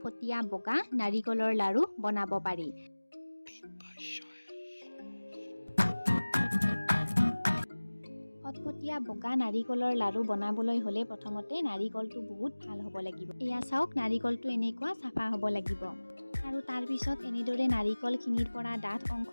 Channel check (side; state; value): both; inverted; correlation -1.00